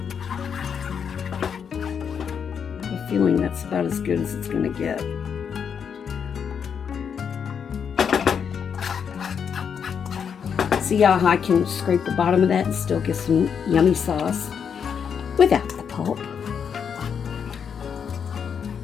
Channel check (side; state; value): right; quieter; 7.2 dB